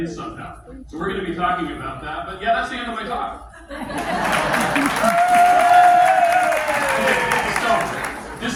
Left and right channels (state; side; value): identical; both; correlation 1.00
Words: somehow. So we're going to be talking about that. But yeah, that's the end of my talk. Okay, so,